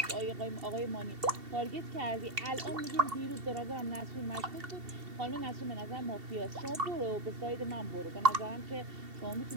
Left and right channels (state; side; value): late; left; 2.7 ms